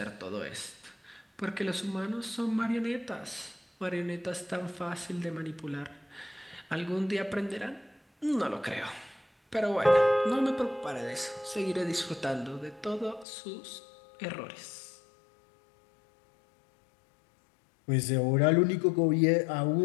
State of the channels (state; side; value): drops out; right; at 13.2 s